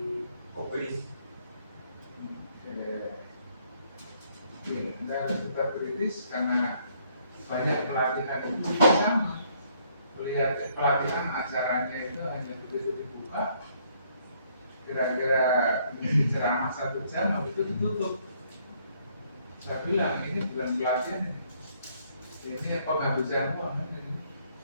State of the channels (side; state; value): both; inverted; correlation -0.67